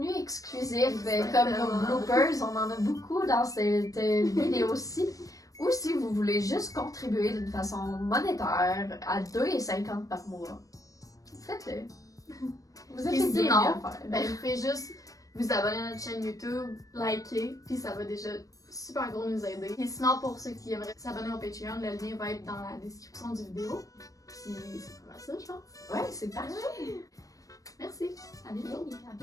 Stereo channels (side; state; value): right; late; 0.16 ms